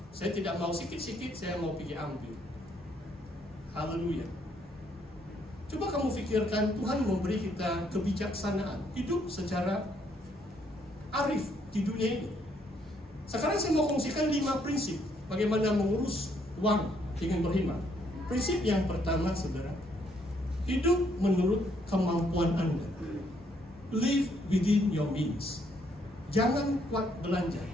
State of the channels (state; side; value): normal; both; correlation 0.70